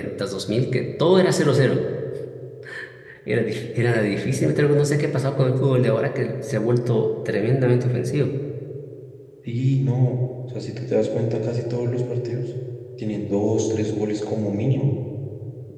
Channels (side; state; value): both; identical; correlation 1.00